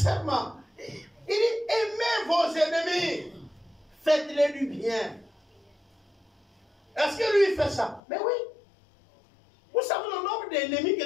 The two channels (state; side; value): drops out; right; at 8.0 s